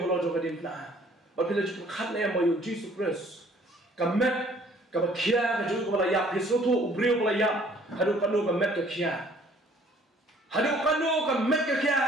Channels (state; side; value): normal; both; correlation 0.57